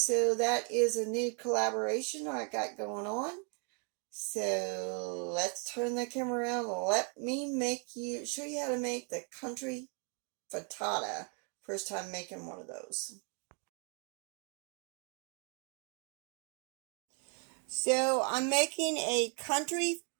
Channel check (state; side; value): quieter; left; 38.6 dB